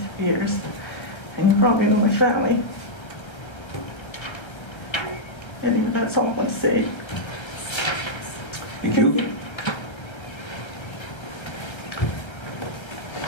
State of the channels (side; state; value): right; late; 1.3 ms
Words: years, and you probably know my family. Anyway, that's all I want to say. Thank you.